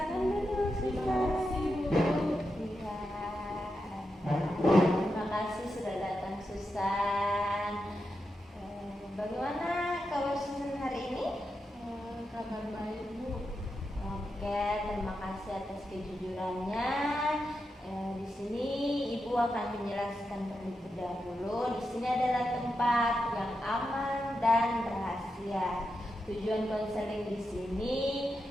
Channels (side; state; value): both; normal; correlation 0.87